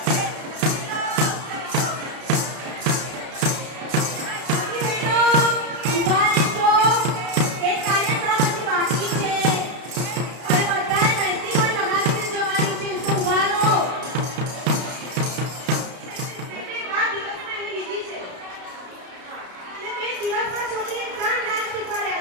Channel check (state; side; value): late; left; 32 ms